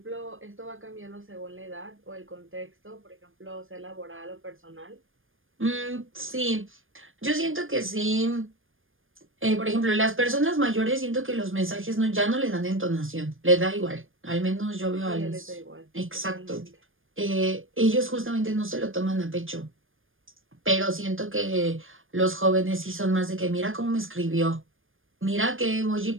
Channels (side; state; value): left; late; 0.59 ms